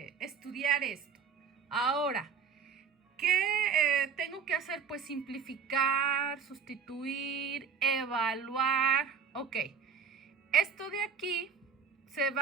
estudiar esto. Ahora, ¿qué tengo que hacer? Pues simplificar, sustituir, evaluar. Ok, esto de aquí se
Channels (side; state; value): left; quieter; 6.3 dB